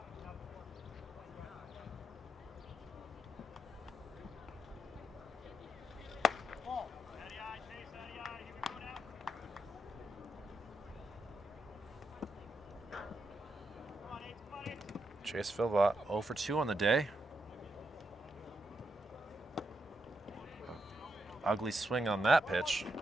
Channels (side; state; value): both; normal; correlation 0.83